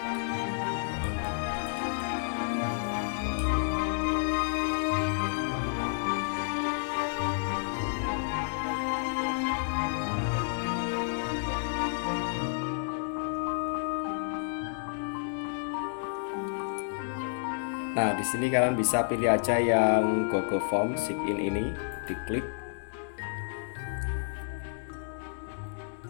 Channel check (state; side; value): silent; right; digital silence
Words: Nah, di sini kalian bisa pilih aja yang Google Form sign in ini, diklik.